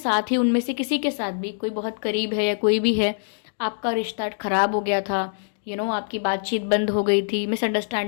ही, उनमें से किसी के साथ भी, कोई बहुत करीब है या कोई भी है, आपका रिश्ता ख़राब हो गया था, आपकी बातचीत बंद हो गई थी,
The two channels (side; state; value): right; silent; digital silence